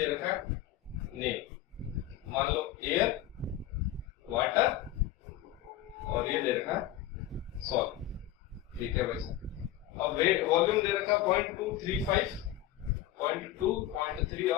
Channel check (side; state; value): right; quieter; 13.2 dB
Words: रखा है नेम, मान लो एयर, वाटर, और ये दे रखा है सॉल्ट, ठीक है भाई साहब। अब वेट वॉल्यूम दे रखा 0.235, 0.2, 0.3